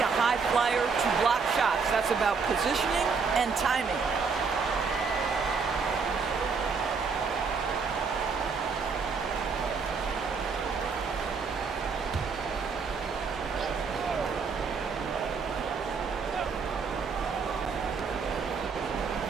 a high flyer to block shots. That's about positioning and timing.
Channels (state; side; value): quieter; left; 5.2 dB